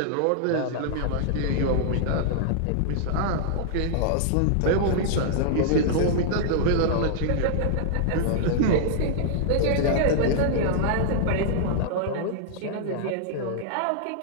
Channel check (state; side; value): different; both; correlation -0.01